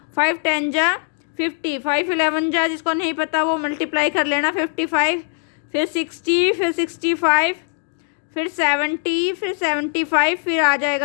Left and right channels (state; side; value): silent; right; 65 dB below the other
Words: 5 10 जा 50, 5 11 जा, जिसको नहीं पता वो मल्टीप्लाई कर लेना, 55, फिर 60, फिर 65, फिर 70, फिर 75, फिर आ